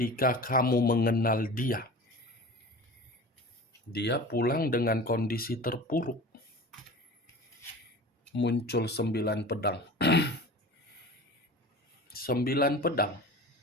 kamu mengenal dia. Dia pulang dengan kondisi terpuruk. Muncul 9 pedang. 9 pedang.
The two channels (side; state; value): both; normal; correlation 0.36